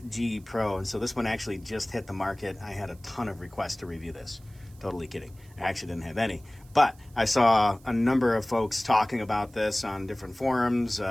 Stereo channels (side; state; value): right; noise; hiss, 28 dB below the sound